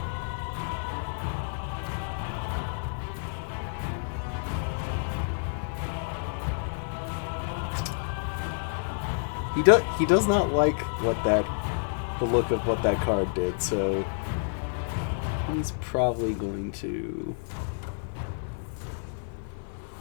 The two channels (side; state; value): right; silent; 58 dB below the other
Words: He does not like the look of what that card did, so he's probably going to.